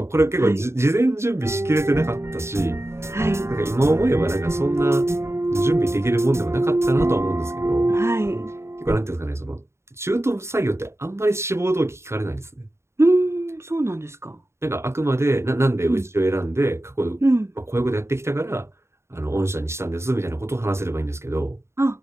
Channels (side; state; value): left; late; 0.13 ms